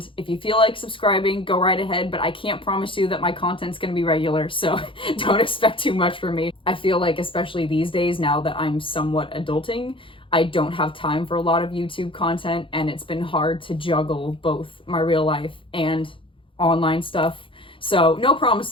if you feel like subscribing, go right ahead, but I can't promise you that my content's gonna be regular, so don't expect too much from me. I feel like, especially these days, now that I'm somewhat adulting, I don't have time for a lot of YouTube content, and it's been hard to juggle both my real life and online stuff. So no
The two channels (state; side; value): late; right; 0.25 ms